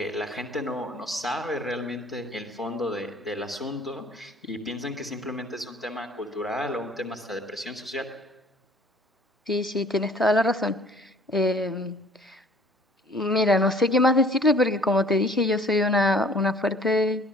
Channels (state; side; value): normal; both; correlation 0.53